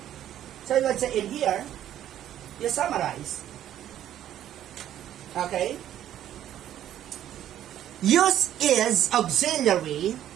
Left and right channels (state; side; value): quieter; left; 11.5 dB